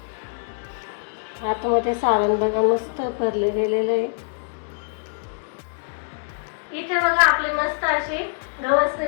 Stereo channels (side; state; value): right; silent; digital silence